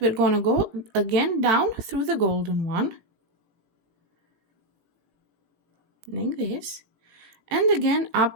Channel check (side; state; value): left; late; 18 ms